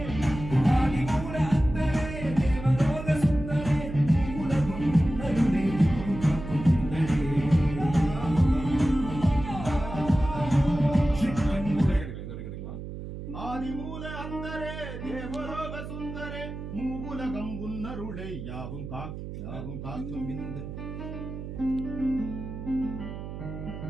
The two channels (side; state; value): right; noise; hum, 9 dB below the sound